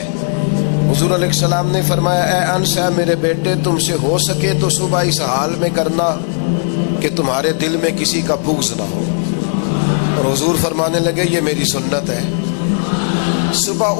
حضور علیہ السلام نے فرمایا اے انس ہے میرے بیٹے, تم سے ہو سکے تو صبح اس حال میں کرنا کہ تمہارے دل میں کسی کا بغض نہ ہو. اور حضور فرمانے لگے یہ میری سنت ہے.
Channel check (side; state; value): right; silent; digital silence